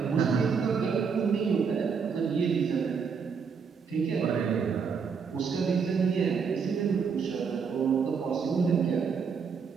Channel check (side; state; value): left; quieter; 6.0 dB